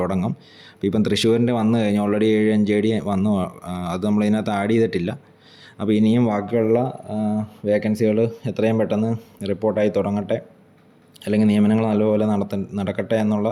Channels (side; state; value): both; identical; correlation 1.00